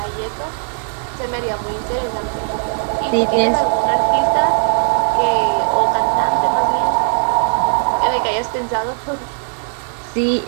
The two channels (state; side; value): silent; left; 61 dB below the other